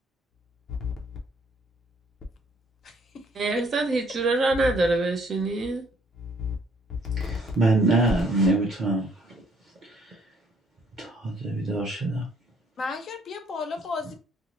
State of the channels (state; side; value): normal; both; correlation 0.63